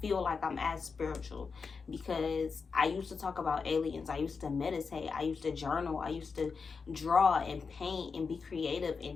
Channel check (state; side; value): quieter; right; 5.1 dB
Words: feel like I'm as spiritual, because I used to talk about aliens. I used to meditate. I used to journal. I used to draw and paint and be creative